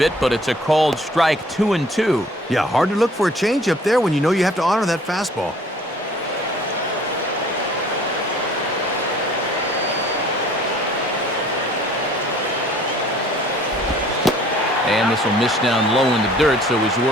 but it's a called strike. 2-2. Yeah, hard to look for a change up there when you know you have to honor that fastball. And this will miss down low in the dirt, so he's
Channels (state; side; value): normal; both; correlation 0.54